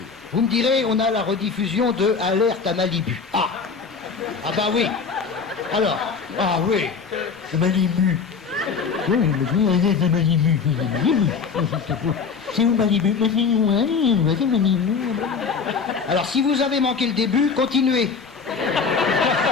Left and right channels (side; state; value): right; quieter; 5.5 dB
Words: Vous me direz, on a la rediffusion de Alerte à Malibu. Ah bah oui. Alors, ah oui. Malibu. Oui, Alerte à Malibu. C'est où Malibu? C'est Malibu. Alors, si vous avez manqué le début, continuez.